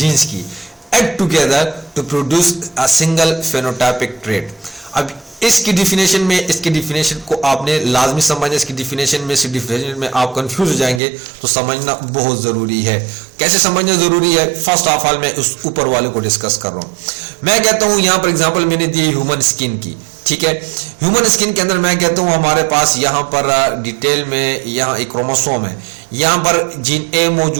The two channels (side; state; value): left; drops out; at 11.0 s